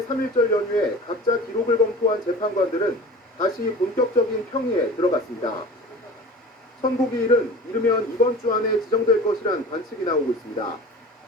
3.1절 연휴에 각자 기록을 검토한 재판관들은 다시 본격적인 평의에 들어갔습니다. 선고기일은 이르면 이번 주 안에 지정될 것이란 관측이 나오고 있습니다.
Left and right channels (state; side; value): normal; both; correlation 0.38